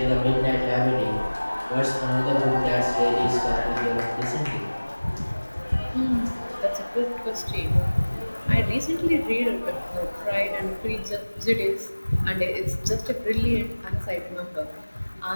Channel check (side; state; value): both; inverted; correlation -1.00